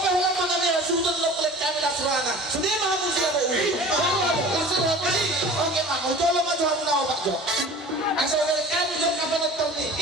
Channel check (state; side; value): normal; both; correlation 0.41